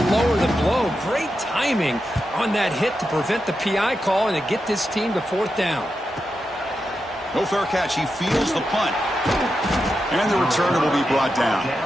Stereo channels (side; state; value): both; normal; correlation 0.88